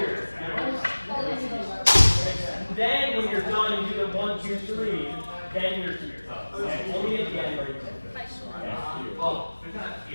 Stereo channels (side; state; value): both; inverted; correlation -1.00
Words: Then when you're done and you do the 1, 2, 3, then you're here. And only at the end are you Well, we're not